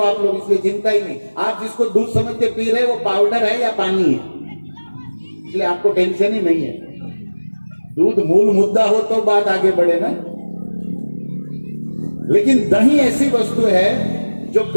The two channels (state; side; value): inverted; both; correlation -1.00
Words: आप लोग, इसलिए चिंता ही नहीं। आप जिसको दूध समझ के पी रहे हो वो पाउडर है या पानी है, इसलिए आपको टेंशन ही नहीं है। दूध मूल मुद्दा हो तो बात आगे बढ़े ना। लेकिन दही ऐसी वस्तु है जो